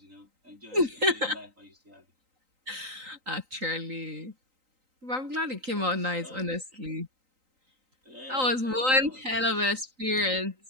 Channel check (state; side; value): late; left; 3.9 ms